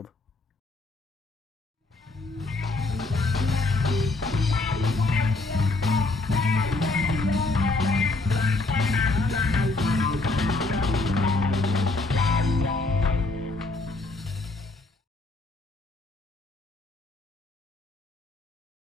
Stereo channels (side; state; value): right; quieter; 3.2 dB